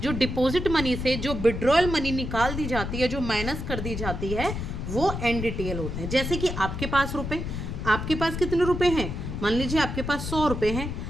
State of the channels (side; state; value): left; noise; rumble, 5 dB below the sound